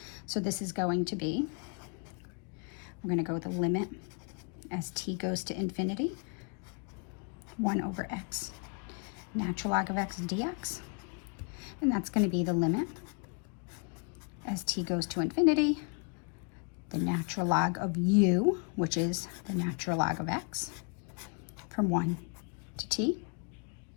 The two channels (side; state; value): right; quieter; 36.2 dB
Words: So this is going to be, we're going to go with the limit as t goes to infinity, 1 over x natural log of x dx. And that's going to be the limit as t goes to infinity, the natural log of u, which is the natural log of x, from 1 to t.